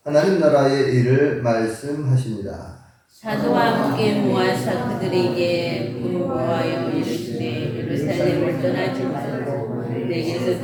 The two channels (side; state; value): both; identical; correlation 1.00